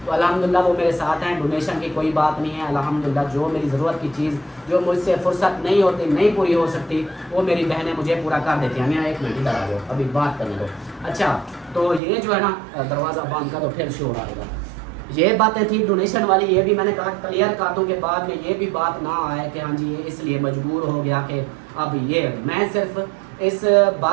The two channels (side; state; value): left; drops out; at 12.0 s